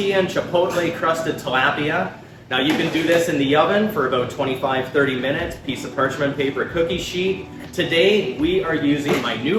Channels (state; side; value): identical; both; correlation 1.00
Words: and chipotle crusted tilapia. Now you can do this in the oven for about 25-30 minutes, piece of parchment paper cookie sheet. Today we are using my